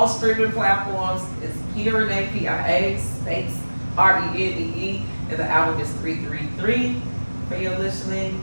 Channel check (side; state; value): both; inverted; correlation -1.00